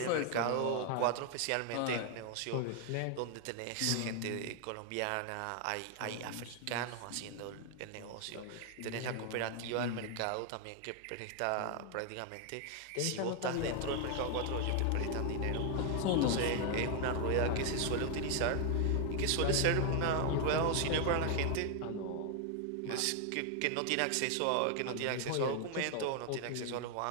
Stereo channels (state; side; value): different; both; correlation 0.00